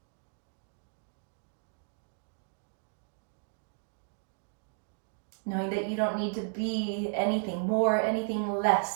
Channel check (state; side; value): silent; left; digital silence